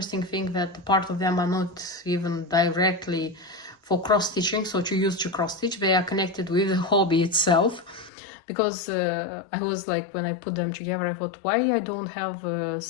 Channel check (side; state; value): right; drops out; at 8.1 s